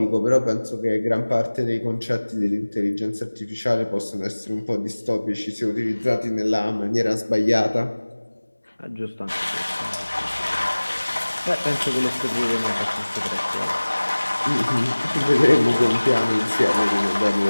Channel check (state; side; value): inverted; both; correlation -1.00